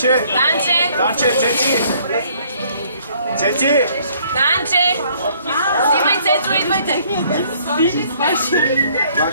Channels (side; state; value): both; inverted; correlation -0.62